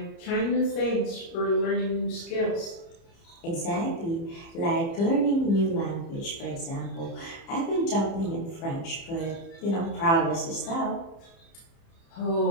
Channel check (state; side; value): late; right; 30 ms